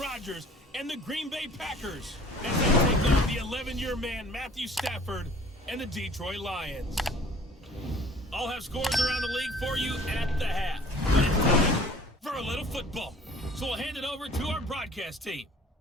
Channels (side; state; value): both; normal; correlation 0.50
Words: and the Green Bay Packers as they take on the 11-year man Matthew Stafford and the Detroit Lions. I'll have scores around the league for you at the half, but it's time for a little football. So we'll hand it over to our broadcast team,